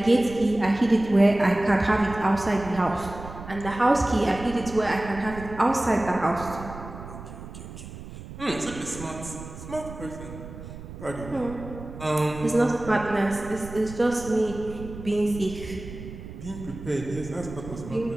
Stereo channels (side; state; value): right; noise; rumble, 13 dB below the sound